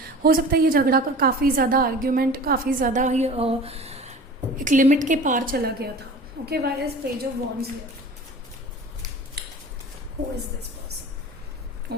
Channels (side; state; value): both; normal; correlation 0.39